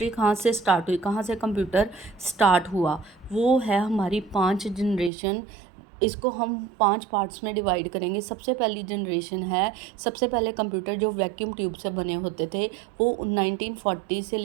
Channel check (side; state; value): left; drops out; at 5.1 s